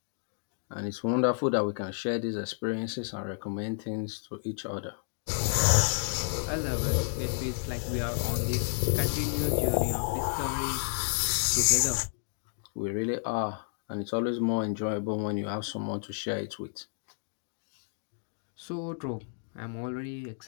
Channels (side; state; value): right; silent; digital silence